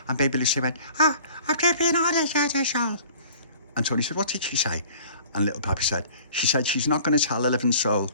baby Lucy went, I've just been on a soul. And Tony said, what did she say? And little Papi said, she said she's not going to tell a living soul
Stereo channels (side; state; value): both; inverted; correlation -0.49